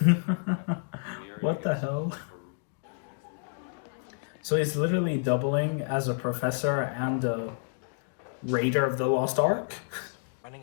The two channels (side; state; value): right; silent; digital silence